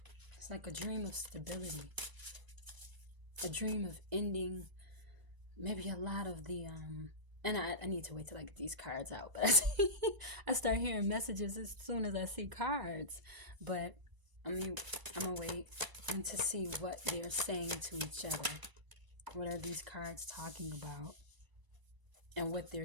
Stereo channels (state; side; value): late; left; 1.0 ms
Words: It's like a dream of stability, a dream of ending maybe a lot of the and I need to wait till I get these cards out, but I start hearing messages as soon as I see cards. But I'm gonna wait and to see what they're saying to each other. What are these cards talking about, and what they're